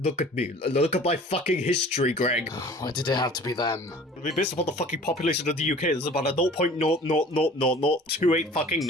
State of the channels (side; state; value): both; normal; correlation 0.46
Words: at me. Look at my fucking history, Greg. Why did it have to be them? I mean, based upon the fucking population of the UK, there's about a 0.0000028 fucking